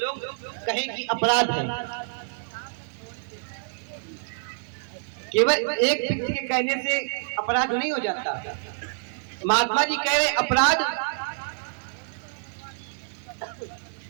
कहें कि अपराध है। केवल एक व्यक्ति के कहने से अपराध नहीं हो जाता। महात्मा जी कह रहे अपराध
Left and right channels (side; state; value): left; silent; 60 dB below the other